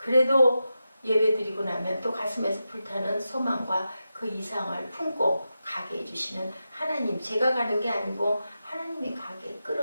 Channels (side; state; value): both; inverted; correlation -0.90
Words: 예배드리고 나면 또 가슴에서 불타는 소망과 그 이상을 품고 가게 해주시는 하나님, 제가 가는 게 아니고 하나님이 가게